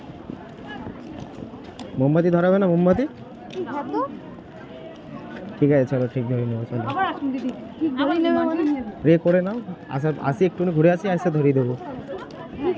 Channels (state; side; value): identical; both; correlation 1.00